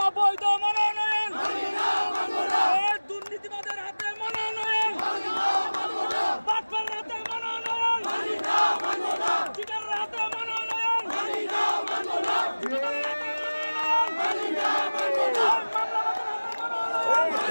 অবৈধ মনোনয়ন, দুর্নীতিবাদের হাতে মনোনয়ন, বাটপার হাতে মনোনয়ন, চিটার হাতে মনোনয়ন, মামলাবাদের হাতে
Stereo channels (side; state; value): both; inverted; correlation -1.00